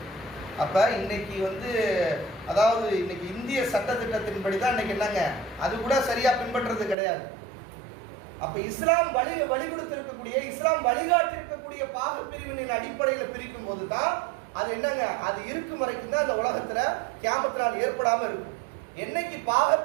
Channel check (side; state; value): left; drops out; at 7.0 s